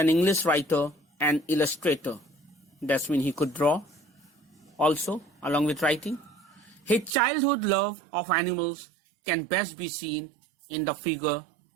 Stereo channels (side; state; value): left; drops out; at 7.2 s